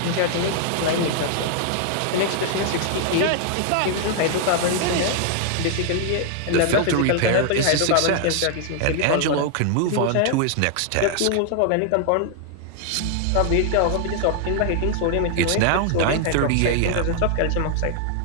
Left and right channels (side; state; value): both; different; correlation 0.00